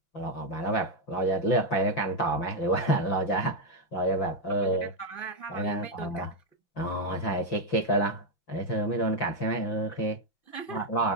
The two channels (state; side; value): late; right; 5.8 ms